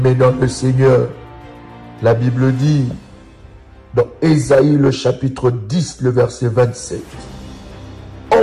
dans le Seigneur, la Bible dit dans Ésaïe le chapitre 10, le verset 27, «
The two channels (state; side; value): identical; both; correlation 1.00